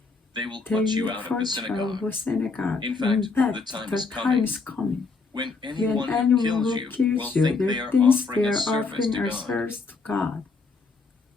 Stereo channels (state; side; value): quieter; right; 4.3 dB